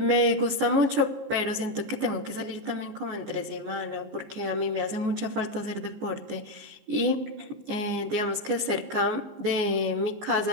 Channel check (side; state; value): left; late; 15 ms